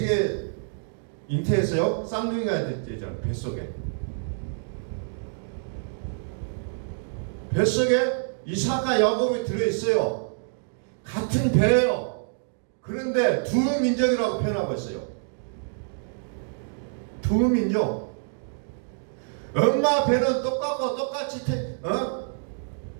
잉태했어요? 쌍둥이가 됐잖아요. 뱃속에 이삭과 야곱이 들어있어요. 같은 배예요. 그런데 두 민족이라고 표현하고 있어요. 두 민족. 엄마 배는 똑같고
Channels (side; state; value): left; silent; digital silence